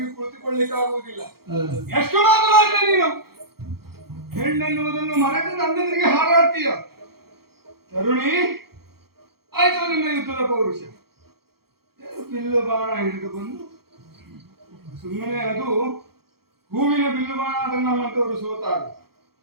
ಕುಳಿತುಕೊಳ್ಳಿಕ್ಕೆ ಆಗುವುದಿಲ್ಲ. ಎಷ್ಟು ಮಾತನಾಡಿದ್ರೆ ನೀನು ಹೆಣ್ಣೆನ್ನುವುದನ್ನು ಮರೆತು ನನ್ನೆದುರಿಗೆ ಹಾರಾಡ್ತೀಯ. ತರುಣಿ, ಆಯ್ತು ನಿನ್ನ ಯುದ್ಧದ ಪೌರುಷ. ಬಿಲ್ಲು ಬಾಣ ಹಿಡಿದು ಬಂದು ಸುಮ್ಮನೆ ಅದು ಹೂವಿನ ಬಿಲ್ಲು ಬಾಣ, ಅದನ್ನು ನಮ್ಮಂತವರು ಸೋತಾರು.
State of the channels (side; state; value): left; late; 0.95 ms